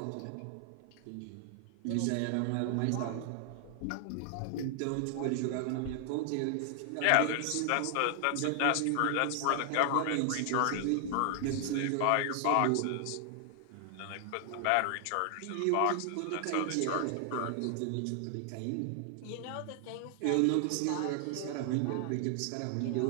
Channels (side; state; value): both; different; correlation 0.00